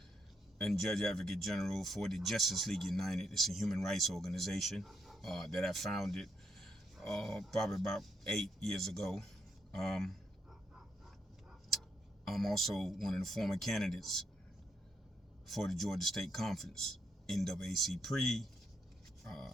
and Judge Advocate General for the Justice League United. It's a human rights organization that I founded probably about 8 years ago. I'm also one of the former candidates for the Georgia State Conference, NAAC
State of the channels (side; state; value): both; normal; correlation 0.77